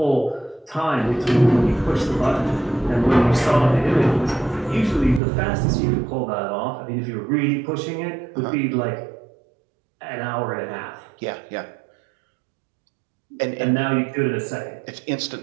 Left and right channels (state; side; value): drops out; left; at 5.2 s